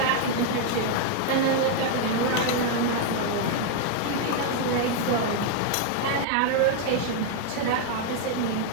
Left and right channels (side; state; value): both; different; correlation 0.00